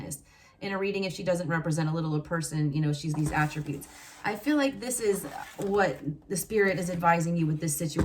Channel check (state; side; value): identical; both; correlation 1.00